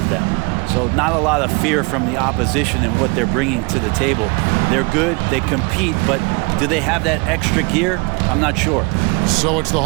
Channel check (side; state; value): left; quieter; 29.3 dB